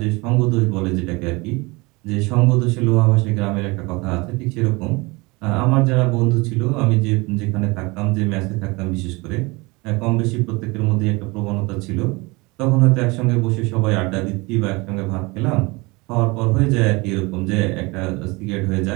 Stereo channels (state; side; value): quieter; left; 25.1 dB